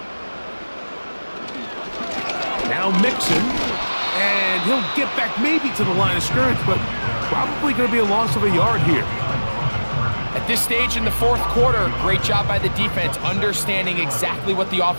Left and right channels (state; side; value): inverted; both; correlation -1.00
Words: Now Mixon, and he'll get back maybe to the line of scrimmage, but probably going to be a loss of a yard here. At this stage in the 4th quarter, great job by the defense, understanding exactly what the